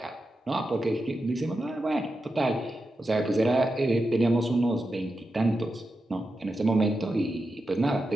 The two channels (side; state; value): both; normal; correlation 0.89